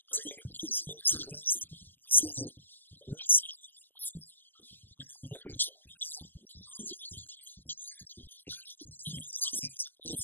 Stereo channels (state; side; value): late; right; 0.090 ms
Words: and so you can page through your set list and see what song you want to perform, and then when you push play, you'll notice 2 things. It plays